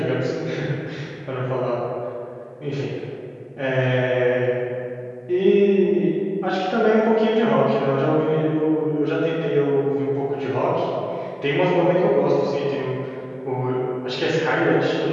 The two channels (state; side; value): identical; both; correlation 1.00